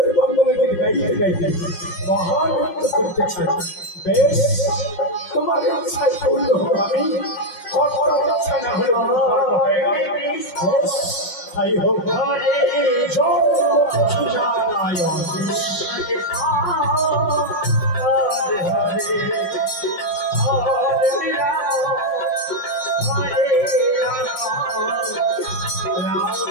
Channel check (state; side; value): late; right; 5.5 ms